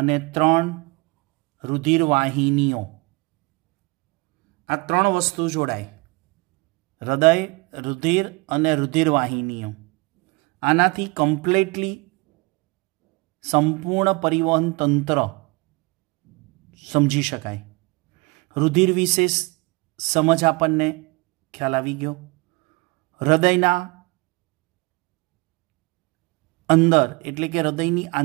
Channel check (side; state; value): left; quieter; 26.6 dB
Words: 3 रुधिर वाहिनीओ, आ 3 वस्तु जोड़ाय। हृदय, रुधिर अने रुधिर वाहिनीओ, आनाथी कम्प्लीटली संपूर्ण परिवहन तंत्र समझी शकाय। रुधिर विशे समझ आपणने ख्याल आवी गयो। हृदयना अंदर एटले के हृदयनी